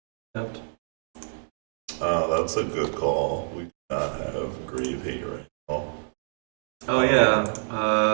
Tapped. That's a good call. We do not have Grave Hate right now. Oh yeah.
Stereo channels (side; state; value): left; silent; digital silence